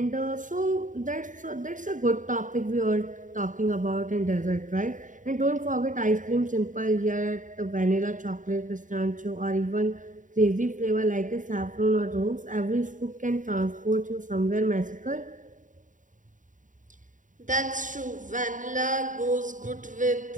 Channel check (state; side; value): late; left; 0.37 ms